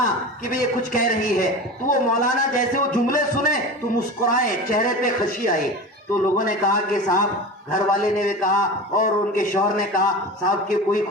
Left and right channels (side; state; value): both; normal; correlation 0.31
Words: कि भाई ये कुछ कह रही है, तो वो मौलाना जैसे वो जुमले सुने तो मुस्कुराए, चेहरे पे खुशी आई। तो लोगों ने कहा कि साहब, घर वाले ने भी कहा और उनके शौहर ने कहा, साहब की कोई